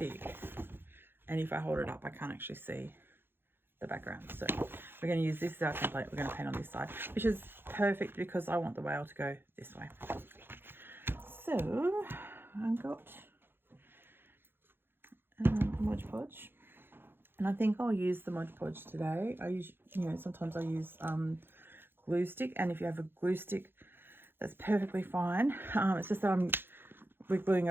and if I hold it up I can't actually see the background. So we're going to use this as our template. We're going to paint on this side, which is perfect because I want the whale to go this way. So I've got Mod Podge, and I think I'll use the Mod Podge today. I use, sometimes I use glue stick, and if you have a glue stick, that's perfectly fine. It's just that we're gluing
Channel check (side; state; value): left; late; 0.10 ms